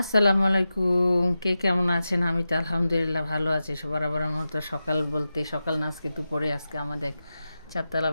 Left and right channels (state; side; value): inverted; both; correlation -0.92